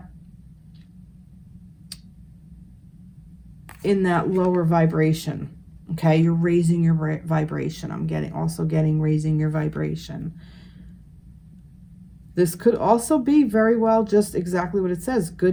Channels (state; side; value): identical; both; correlation 1.00